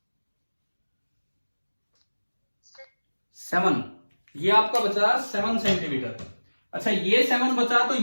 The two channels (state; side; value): inverted; both; correlation -1.00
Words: 7। ये आपका बचा 7 सेंटीमीटर। अच्छा ये 7 बचा तो